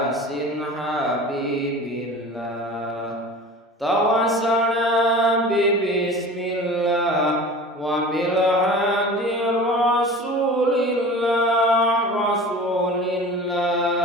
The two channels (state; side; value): normal; both; correlation 0.38